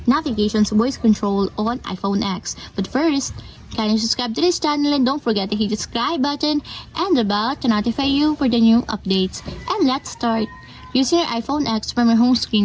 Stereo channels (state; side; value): identical; both; correlation 1.00